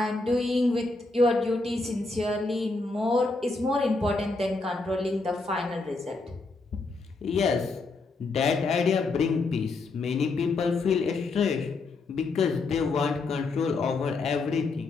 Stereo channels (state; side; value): quieter; right; 3.6 dB